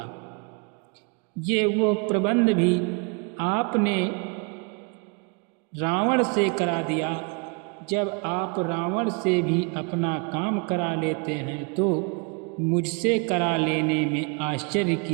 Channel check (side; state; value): left; quieter; 34.1 dB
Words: ये वो प्रबंध भी आपने रावण से करा दिया। जब आप रावण से भी अपना काम करा लेते हैं तो मुझसे करा लेने में आश्चर्य